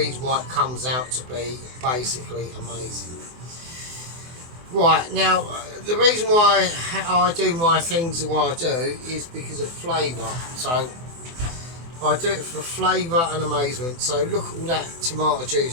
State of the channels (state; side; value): late; left; 24 ms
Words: why it comes out to be basically amazing. Right, now, the reason why I do my things the way I do is because of flavour. So I do it for flavour and amazement. So look at all that tomato